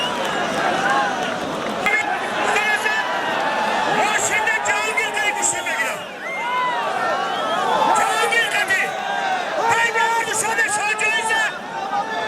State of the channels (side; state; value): both; identical; correlation 1.00